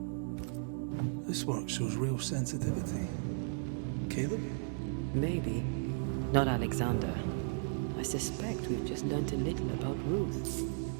This work shows real sensitivity. Caleb? Maybe. Not Alexander. I suspect we've just learnt a little about Ruth.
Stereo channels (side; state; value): left; silent; digital silence